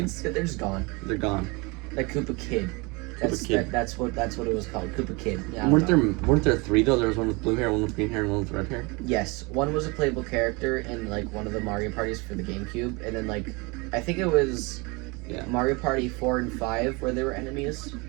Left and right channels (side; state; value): left; quieter; 27.4 dB